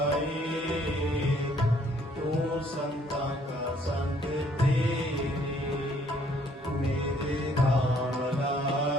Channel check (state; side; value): normal; both; correlation 0.63